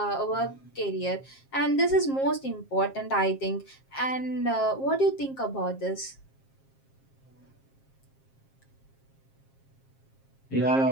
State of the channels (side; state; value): right; late; 7.5 ms